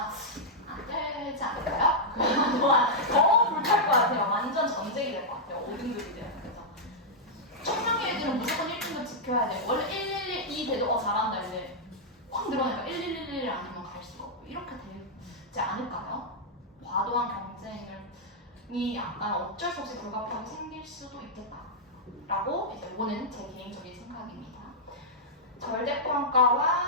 안 되지 않을까요? 그동안 더 불탈 것 같아요. 완전 전쟁이 될 것 같아요. 5등급이 되면 그죠? 청량의 애들은 무조건 1등급 지켜야 돼. 원래 112 돼도 잘한다 이제 확 늘어나니까 1111 아니면 갈 수가 없고 이렇게 되지 않을까요? 과도한 경쟁이 약간 어쩔 수 없이 불가피하게 생길 수도 있겠다라고 이제 이거는 제 개인적인 생각입니다.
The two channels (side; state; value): both; normal; correlation -0.07